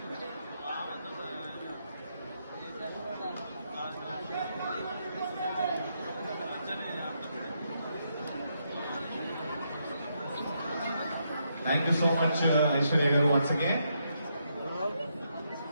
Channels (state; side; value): inverted; both; correlation -0.79